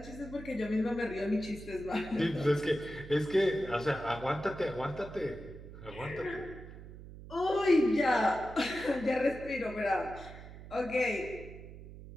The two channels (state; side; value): noise; right; hum, 14 dB below the sound